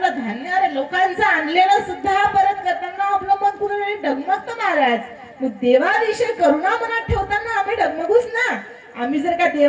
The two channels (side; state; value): both; identical; correlation 1.00